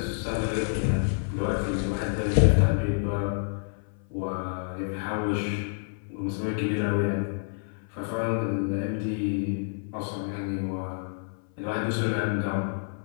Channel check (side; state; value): right; silent; 59 dB below the other